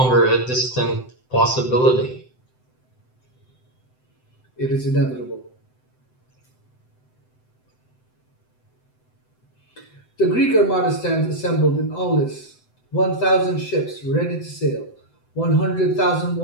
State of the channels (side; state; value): right; late; 7.8 ms